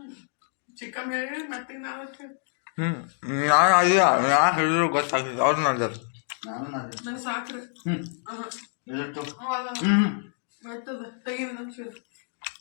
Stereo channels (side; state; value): right; silent; 60 dB below the other